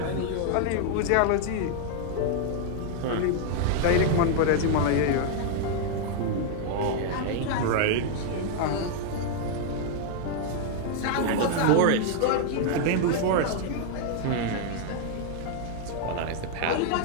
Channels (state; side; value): different; both; correlation 0.00